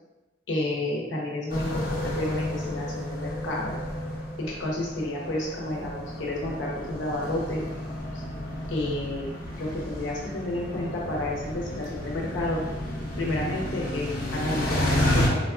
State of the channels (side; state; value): both; normal; correlation 0.59